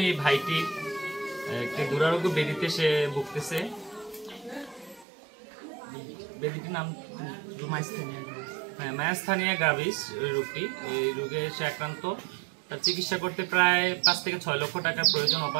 এই ভাইটি একটি দুরারোগ্য ব্যাধিতে সে ভুগতেছে। ব্যাধিটির নাম মায়াস্থানিয়া গ্রাভিস রোগটি। এই রোগে সে আক্রান্ত। তার চিকিৎসা করতে প্রায় 5 থেকে 6 লক্ষ টাকার প্রয়োজন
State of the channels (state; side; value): drops out; left; at 5.1 s